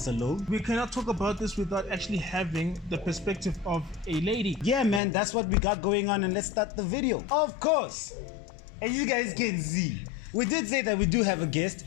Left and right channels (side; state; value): right; drops out; at 5.0 s